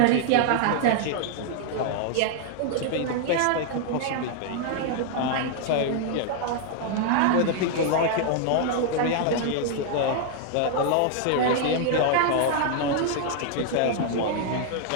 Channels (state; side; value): different; both; correlation 0.00